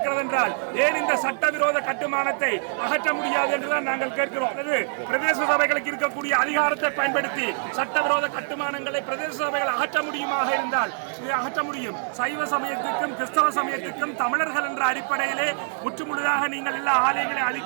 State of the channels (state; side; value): silent; left; 62 dB below the other